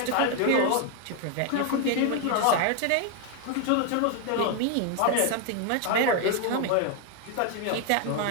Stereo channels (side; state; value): both; different; correlation 0.01